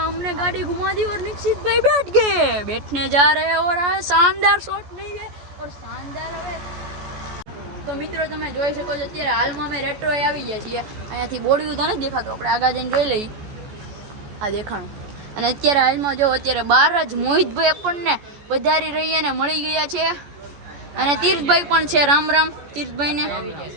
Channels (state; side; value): late; left; 14 ms